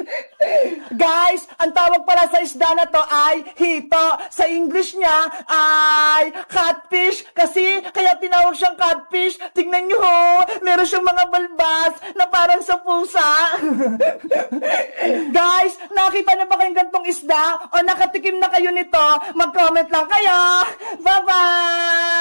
Guys, ang tawag pala sa isda na to ay hito. Sa English niya ay catfish. Kasi kaya tinawag siyang catfish. Tignan nyo ho! Meron siyang mga balbas na parang sa pusa. Guys, nakita na ba kayong gantong isda? O nakatikim na kayo nito? Mag-comment lang kayo.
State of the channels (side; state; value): both; inverted; correlation -1.00